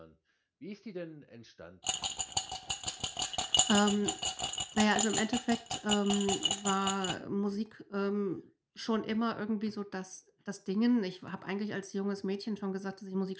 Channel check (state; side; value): identical; both; correlation 1.00